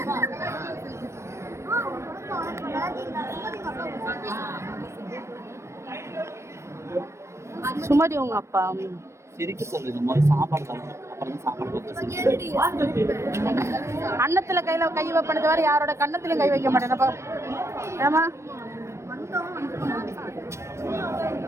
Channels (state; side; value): late; left; 0.13 ms